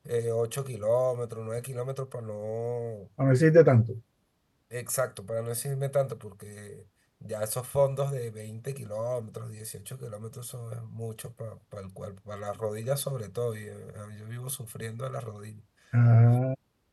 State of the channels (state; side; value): identical; both; correlation 1.00